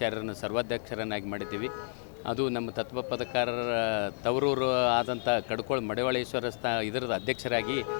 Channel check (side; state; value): right; silent; 57 dB below the other